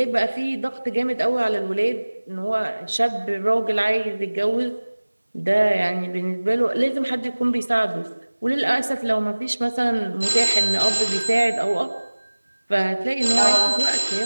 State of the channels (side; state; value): both; inverted; correlation -1.00